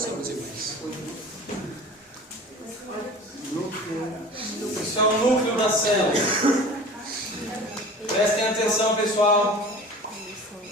Isso é o núcleo da célula. Prestem atenção, pessoal.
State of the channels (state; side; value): normal; both; correlation 0.40